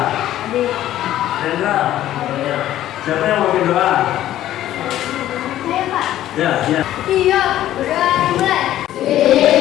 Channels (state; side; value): quieter; right; 13.1 dB